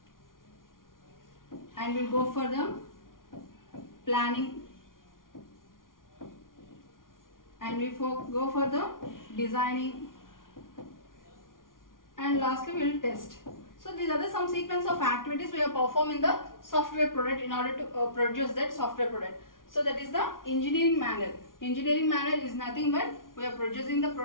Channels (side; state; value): right; late; 0.90 ms